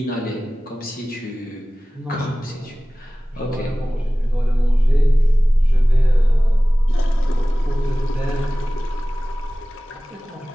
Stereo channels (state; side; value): normal; both; correlation 0.97